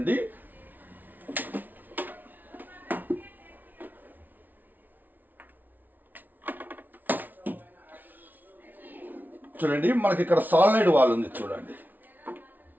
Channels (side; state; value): left; late; 0.083 ms